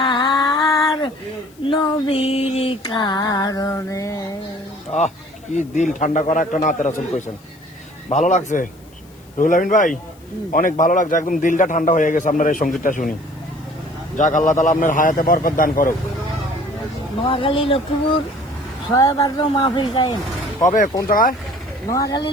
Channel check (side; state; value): left; noise; hiss, 29 dB below the sound